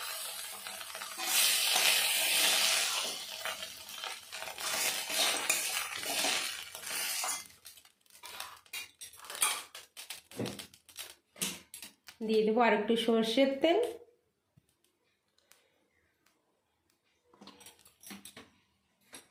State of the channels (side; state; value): both; identical; correlation 1.00